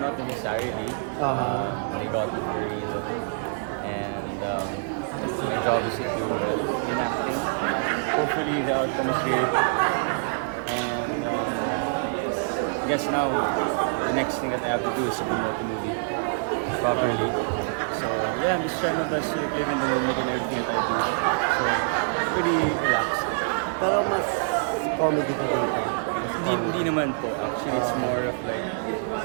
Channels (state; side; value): silent; left; digital silence